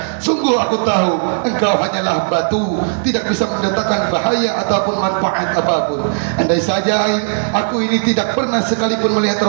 sungguh aku tahu engkau hanyalah batu, tidak bisa mendatangkan bahaya ataupun manfaat apapun. Andai saja aku ini tidak pernah sekalipun melihat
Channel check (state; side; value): silent; left; digital silence